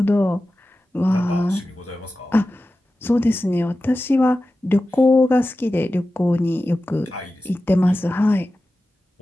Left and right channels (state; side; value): normal; both; correlation 0.94